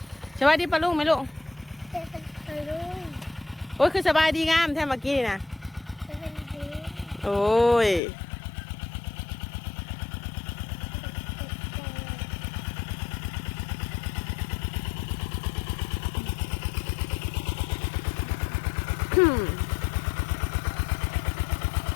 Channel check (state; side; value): drops out; right; at 8.0 s